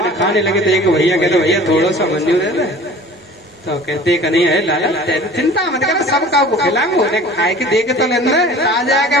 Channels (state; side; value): normal; both; correlation 0.44